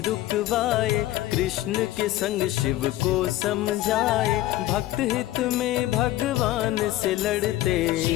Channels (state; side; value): quieter; right; 15.4 dB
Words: रुकवाए। कृष्ण के संग शिव को समझाए, भक्त हित में भगवान से लड़ते।